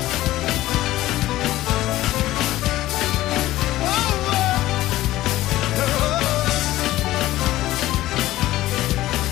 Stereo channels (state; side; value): quieter; right; 15.8 dB